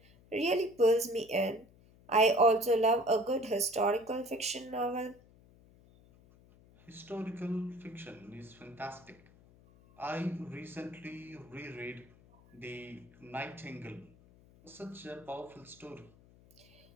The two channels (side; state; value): left; noise; hum, 26 dB below the sound